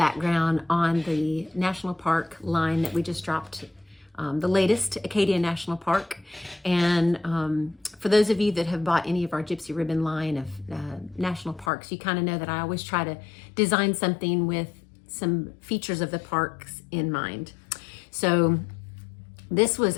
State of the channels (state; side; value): drops out; right; at 11.7 s